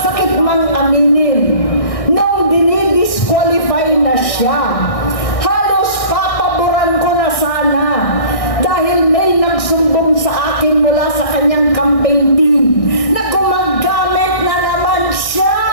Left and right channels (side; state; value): right; late; 1.6 ms